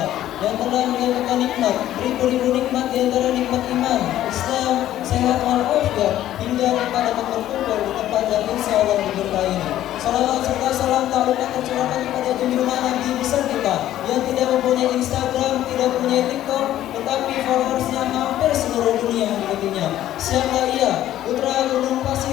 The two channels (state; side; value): quieter; right; 12.9 dB